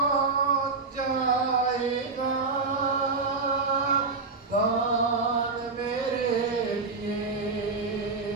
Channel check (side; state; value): left; quieter; 4.1 dB